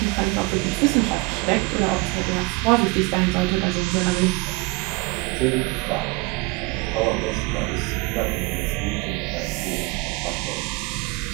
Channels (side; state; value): left; quieter; 25.4 dB